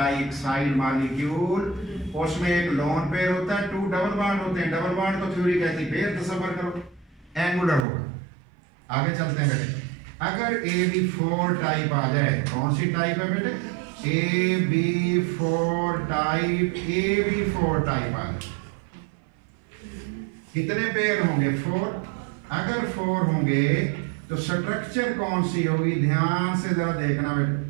मॉलिक्यूल, उसमें एक लोन पेयर होता है, 2 डबल बॉन्ड होते हैं। डबल बॉन्ड तो थ्योरी कहती है, पेयर तसव्वुर करो, एंगुलर होगा। आगे चलते हैं बेटे। अगर AB4 टाइप आ जाए, कौन सी टाइप है बेटे? AB4 type. AB4 टाइप आ जाए, कितने पेयर होंगे? 4। अगर 4 होंगे तो स्ट्रक्चर कौन सी होगी? ध्यान से जरा देखना बेटे।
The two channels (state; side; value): drops out; left; at 7.9 s